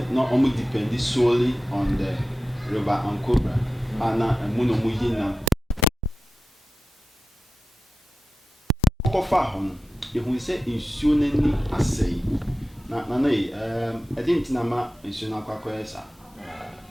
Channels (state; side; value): normal; both; correlation 0.93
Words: na ɔmo depend solely on the river Ankobra ana ɛmu na ɔmo yi nam kɔfa hɔ no yɛhu sɛ nsuo n'ani asɛe na yi ɛde nti na ma nsuo no akɔyɛ saa